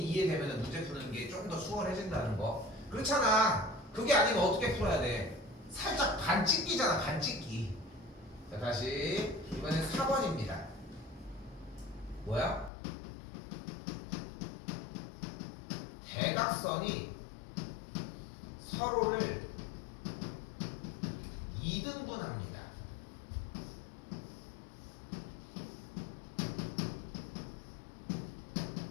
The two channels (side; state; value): right; drops out; at 12.7 s